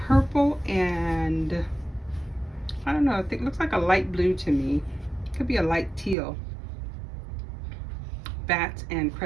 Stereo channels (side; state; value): left; drops out; at 6.2 s